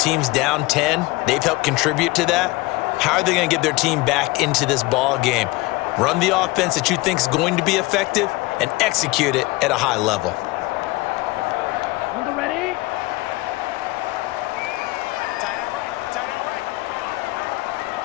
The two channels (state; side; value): quieter; right; 21.4 dB